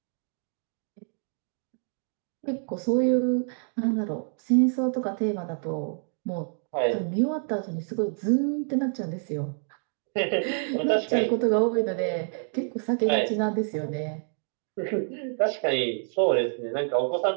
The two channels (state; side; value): silent; left; 59 dB below the other